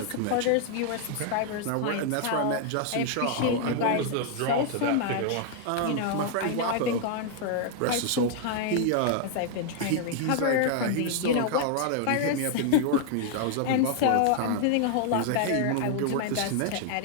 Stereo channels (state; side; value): different; both; correlation 0.00